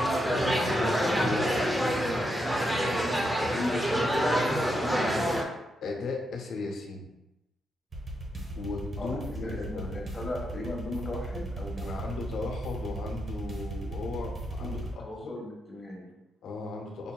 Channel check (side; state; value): both; normal; correlation 0.83